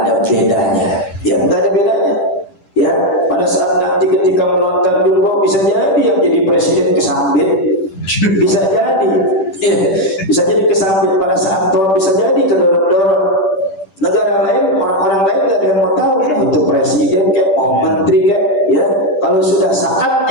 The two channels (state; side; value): late; right; 10 ms